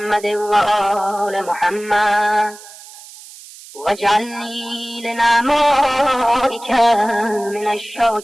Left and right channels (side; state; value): right; noise; hiss, 18 dB below the sound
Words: وآل محمد، واجعلني لنعمائك من